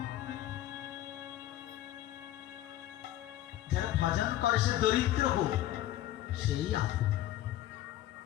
যারা ভজন করে সে দরিদ্র হোক সেই আপন,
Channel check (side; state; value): right; quieter; 13.7 dB